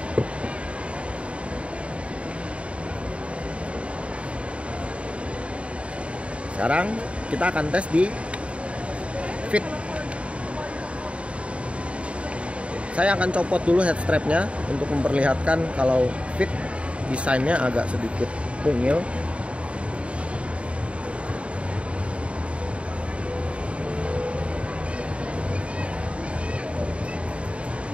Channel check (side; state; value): left; late; 0.061 ms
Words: Sekarang kita akan tes di Fit. Saya akan copot dulu head strapnya untuk memperlihatkan kalau Fit desainnya agak sedikit mungil.